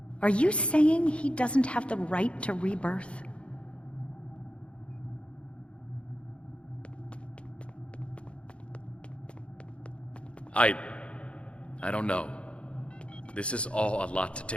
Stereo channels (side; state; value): right; late; 0.059 ms